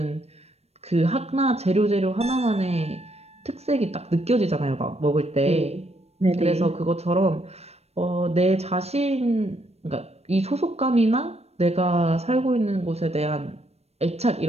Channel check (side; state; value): left; late; 0.31 ms